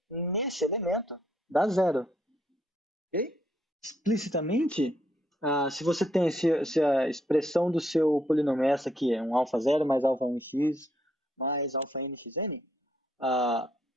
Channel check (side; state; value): both; normal; correlation 0.73